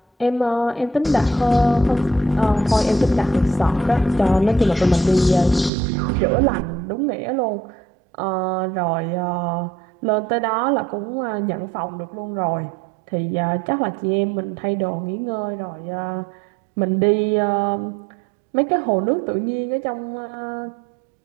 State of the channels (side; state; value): left; drops out; at 5.7 s